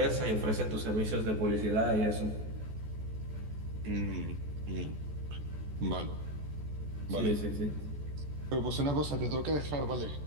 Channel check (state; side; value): late; left; 14 ms